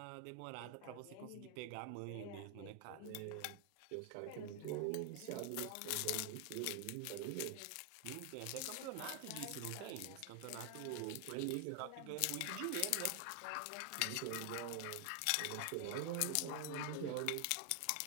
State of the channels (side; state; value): both; different; correlation 0.00